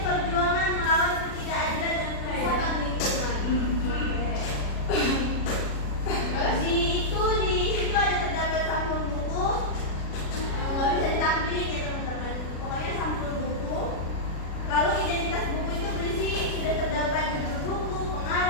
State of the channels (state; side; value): late; right; 36 ms